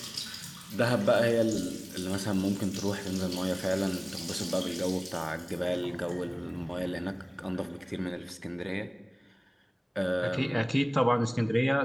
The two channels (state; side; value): identical; both; correlation 1.00